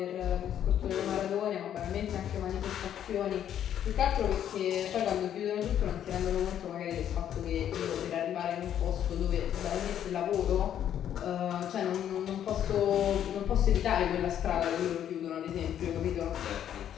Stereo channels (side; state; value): right; quieter; 10.1 dB